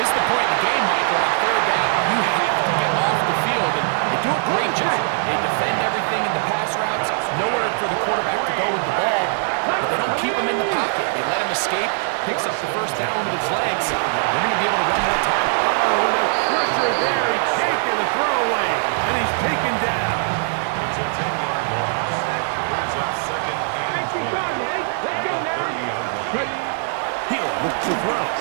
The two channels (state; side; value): silent; left; digital silence